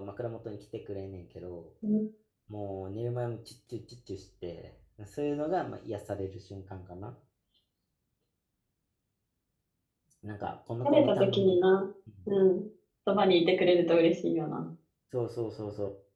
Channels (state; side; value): identical; both; correlation 1.00